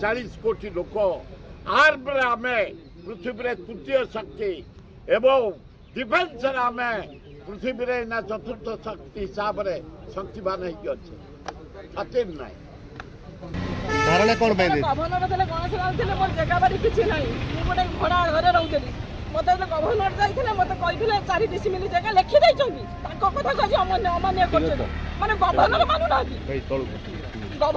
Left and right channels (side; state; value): both; identical; correlation 1.00